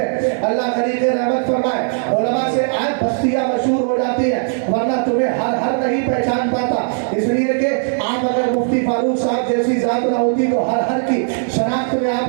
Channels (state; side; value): silent; left; digital silence